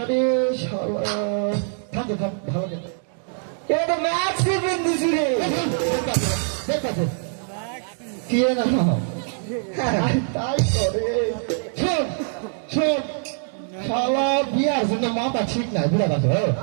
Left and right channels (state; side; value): silent; left; 63 dB below the other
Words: শালা থাম থাম ভালো করে এটা তো ম্যাক্সি পিন্ডিস রে। দেখতে কি না তাই করে শোন শোন, শালা বিয়ার জন্য মাথা ঠিক নাই বুড়া কথা।